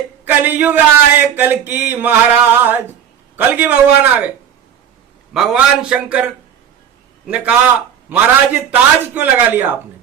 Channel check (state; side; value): quieter; left; 8.9 dB